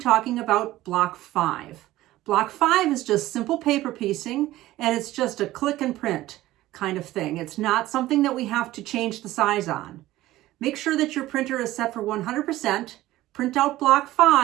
about block 5. Block 5 is just simple paper piecing, and it's just a click and print kind of thing. It's not something that we have to change the size on. Make sure that your printer is set for 100%. Print out block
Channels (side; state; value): left; quieter; 16.1 dB